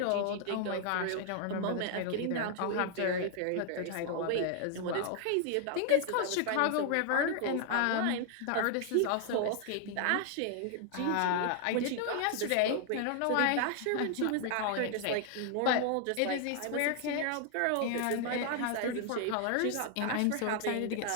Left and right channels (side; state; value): both; different; correlation 0.00